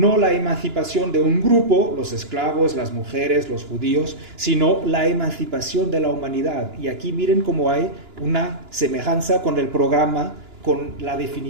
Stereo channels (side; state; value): left; late; 2.9 ms